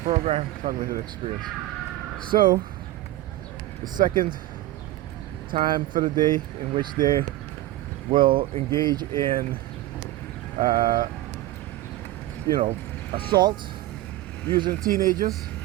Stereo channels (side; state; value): left; quieter; 16.1 dB